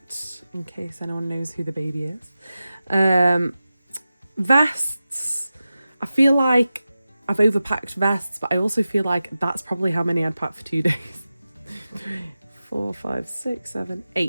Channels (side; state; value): both; inverted; correlation -0.94